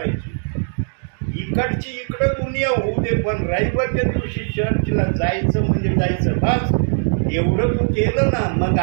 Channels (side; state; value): left; silent; digital silence